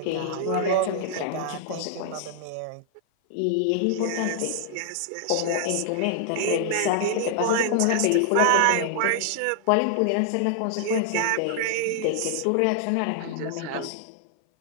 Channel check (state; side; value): different; both; correlation -0.01